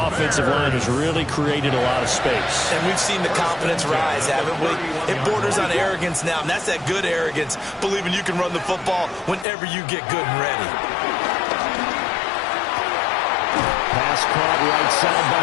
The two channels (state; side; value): drops out; right; at 9.5 s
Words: line has really created a lot of space. And we've seen the confidence rise, haven't we? It borders on arrogance now, and that's that good arrogance, believing you can run the football whenever you get good and ready. Pass caught right side